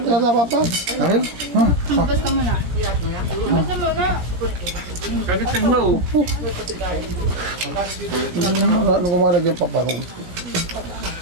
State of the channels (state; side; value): late; left; 17 ms